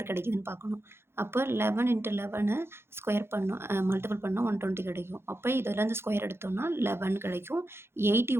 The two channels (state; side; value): late; left; 0.12 ms